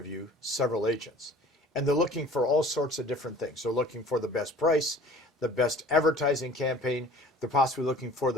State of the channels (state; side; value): normal; both; correlation 0.47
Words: several agents. And they're looking for all sorts of different things. They're looking for the best price, the best advertising campaign. They're possibly looking for